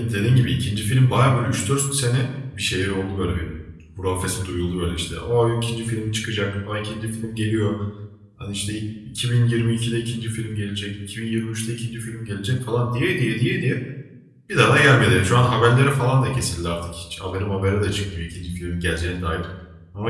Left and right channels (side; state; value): both; identical; correlation 1.00